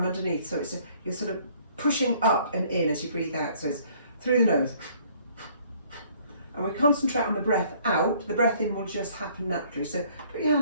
underneath, so you're sort of pushing up and in as you breathe out, so it's through the nose. And we concentrate on the breath out. The breath in will just happen naturally, so put your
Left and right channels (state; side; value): inverted; both; correlation -0.60